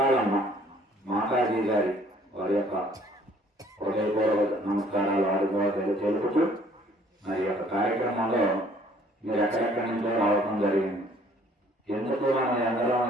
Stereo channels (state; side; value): normal; both; correlation 0.58